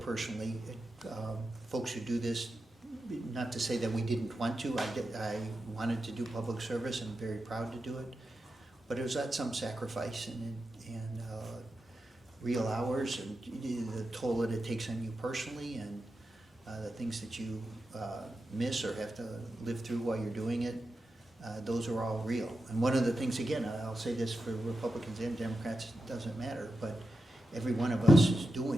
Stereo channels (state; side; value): normal; both; correlation 0.89